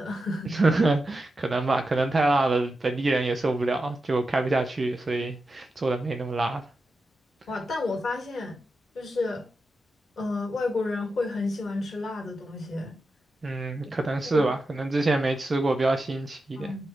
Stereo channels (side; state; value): both; normal; correlation 0.90